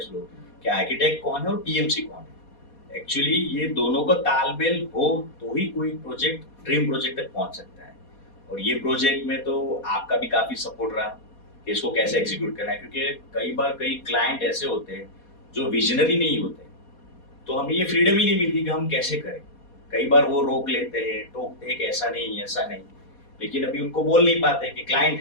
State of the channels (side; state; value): right; late; 4.2 ms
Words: लोग कि आर्किटेक्ट कौन है और पीएमसी कौन है। एक्चुअली ये दोनों का तालमेल हो तो ही कोई प्रोजेक्ट ड्रीम प्रोजेक्ट तक पहुंच सकता है। और ये प्रोजेक्ट में तो आपका भी काफी सपोर्ट रहा कि इसको कैसे एग्जीक्यूट करना है, क्योंकि कई बार कई क्लाइंट ऐसे होते हैं जो विजनरी नहीं होते, तो हमें ये फ्रीडम ही नहीं मिलती कि हम कैसे करें। कई बार वो रोक लेते हैं, टोकते हैं कि ऐसा नहीं ऐसा नहीं, लेकिन अभी उनको बोल नहीं पाते कि क्लाइंट